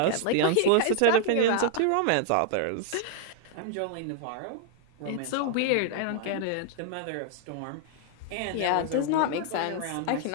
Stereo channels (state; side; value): different; both; correlation -0.01